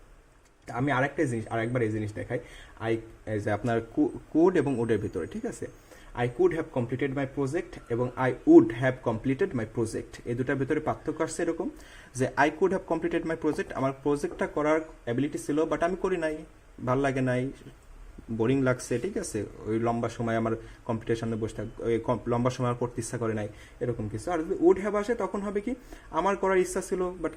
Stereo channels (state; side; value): identical; both; correlation 1.00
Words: আমি আরেকবার এই জিনিস দেখাই, যে আপনার কুড এবং উডের ভিতরে, ঠিক আছে। I could have completed my project এবং I would have completed my project, এই দুটার ভিতরে পার্থক্য আসছে এরকম, যে I could have completed my project, আমার প্রজেক্টটা করার অ্যাবিলিটি ছিল বাট আমি করি নাই, ভাল লাগে নাই, বোরিং লাগছে, ঠিক আছে, ওই লম্বা সময় আমার কম্পিউটারের সামনে বসে ওই লম্বা সময় আমার পড়তে ইচ্ছা করে নাই, এরকম কিছু। আর যদি উড হ্যাভ আসে তখন হবে কি, আমার করার ইচ্ছা ছিল বাট